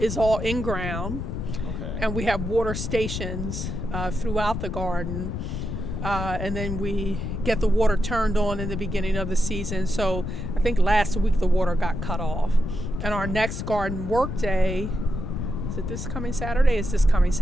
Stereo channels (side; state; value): left; noise; rumble, 4 dB below the sound